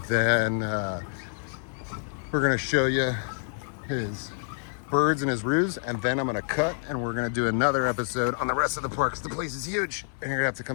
then we're gonna show you his birds and his roos. And then I'm gonna cut and we're gonna do another episode on the rest of the park. 'Cause the place is huge and you're gonna have to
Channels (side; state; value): right; silent; 60 dB below the other